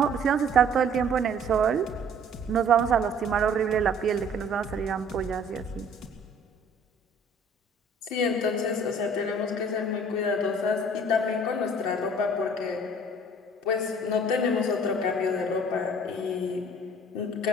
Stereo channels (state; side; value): normal; both; correlation 0.53